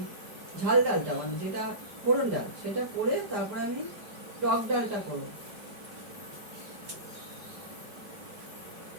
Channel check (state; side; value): late; left; 5.0 ms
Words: ঝাল ডালটা মানে যেটা ফোড়ন ডাল সেটা করে তারপরে আমি টক ডালটা করবো।